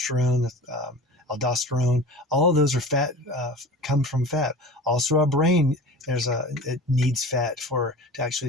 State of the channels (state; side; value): normal; both; correlation 0.36